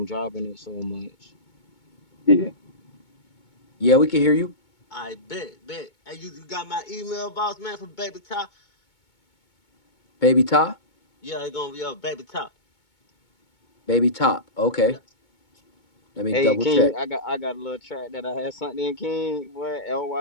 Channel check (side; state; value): right; late; 2.2 ms